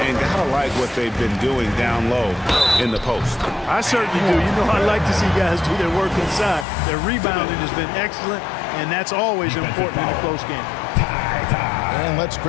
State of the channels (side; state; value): right; drops out; at 6.7 s